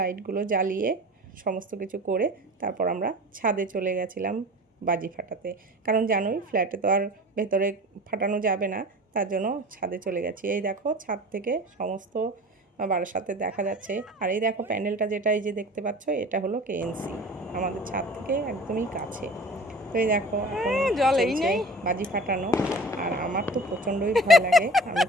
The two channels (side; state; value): both; normal; correlation 0.39